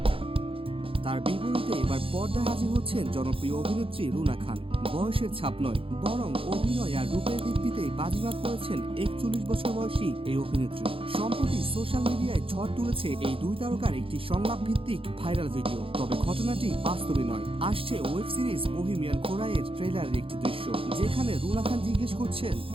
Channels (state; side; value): late; left; 0.27 ms